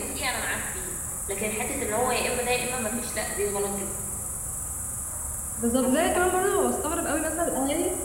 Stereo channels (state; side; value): identical; both; correlation 1.00